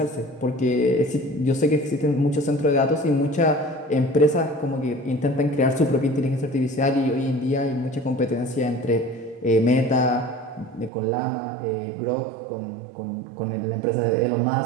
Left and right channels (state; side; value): drops out; left; at 10.9 s